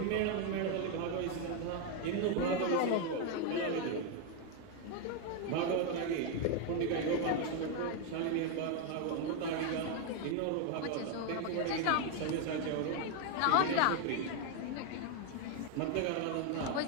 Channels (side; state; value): both; different; correlation 0.01